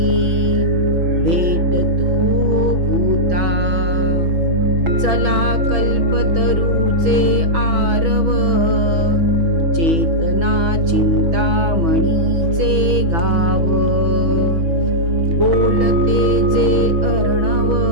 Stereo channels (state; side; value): late; left; 6.1 ms